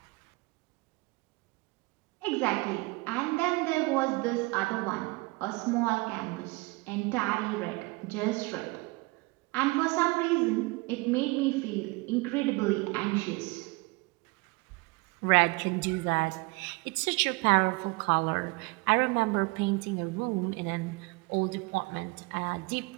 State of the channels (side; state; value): left; quieter; 25.4 dB